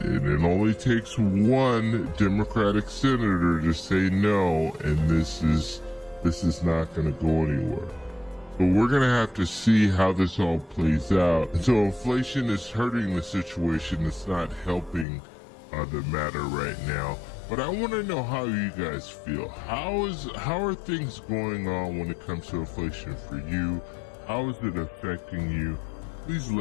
And it only takes one Democratic senator to say no, and this is not going to go anywhere. But we're going to have to see how this all plays out. And so inflation is hurting the situation. It's not helping the matter right now. But I want to know how you guys feel. How are things going on when it comes to inflation for you? How is it affecting you? Please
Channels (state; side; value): drops out; right; at 15.1 s